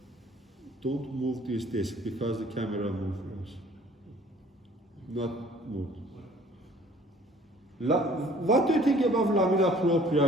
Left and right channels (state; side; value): normal; both; correlation 0.54